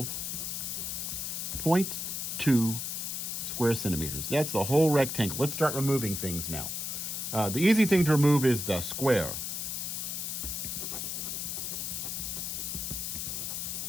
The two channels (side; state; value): left; noise; hiss, 3 dB below the sound